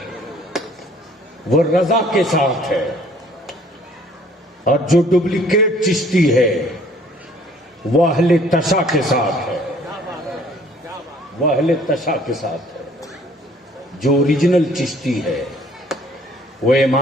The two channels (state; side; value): normal; both; correlation 0.57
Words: वो रजा के साथ है, और जो डुप्लीकेट चिश्ती है वो अहले तशा के साथ है। वो अहले तशा के साथ है। जो ओरिजिनल चिश्ती है वो